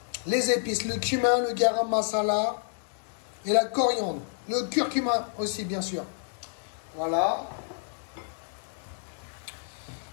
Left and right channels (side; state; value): right; silent; digital silence